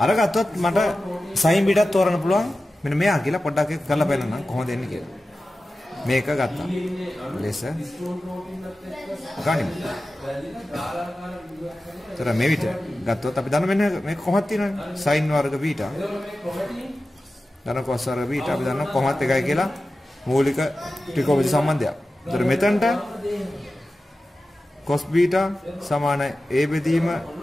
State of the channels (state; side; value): normal; both; correlation 0.94